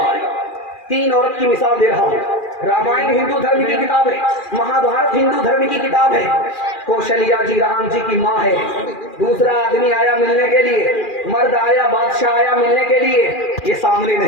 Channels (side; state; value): right; late; 2.4 ms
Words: है। 3 औरत की मिसाल दे रहा हूं। रामायण हिंदू धर्म की किताब है, महाभारत हिंदू धर्म की किताब है। कौशल्या जी राम जी की माँ है। दूसरा आदमी आया मिलने के लिए, मर्द आया, बादशाह आया मिलने के लिए, ये सामने